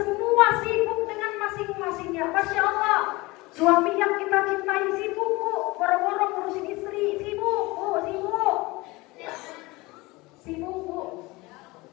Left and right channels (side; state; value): right; quieter; 22.5 dB